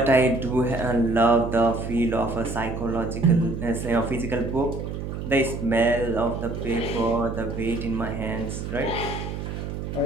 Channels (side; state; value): right; noise; hum, 6 dB below the sound